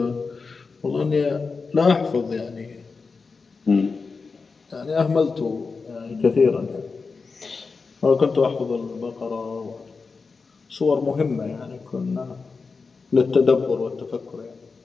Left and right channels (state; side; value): quieter; right; 4.6 dB